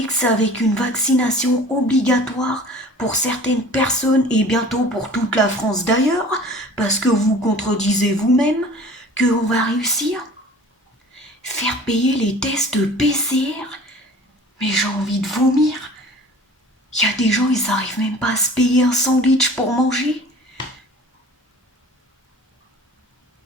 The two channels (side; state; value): both; normal; correlation 0.45